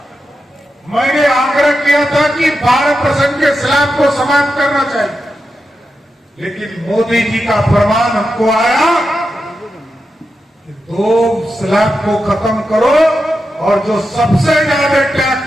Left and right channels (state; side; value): normal; both; correlation 0.89